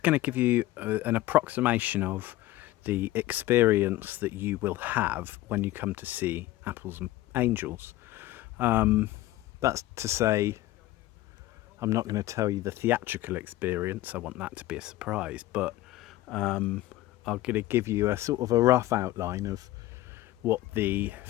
going to give you an approximation of the experience that you will have when you come to see Apples and Angels. That's to say, I'm not going to tell you the theatrical experience. I want that to be a surprise, but I'm going to give you a sort of a rough outline of what the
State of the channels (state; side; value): quieter; right; 16.4 dB